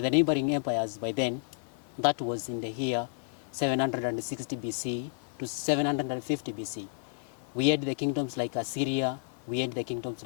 neighboring empires by then, that was in the year 760 BC to 750 BC. We had the kingdoms like Assyria, we had the kingdoms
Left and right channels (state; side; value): silent; right; 57 dB below the other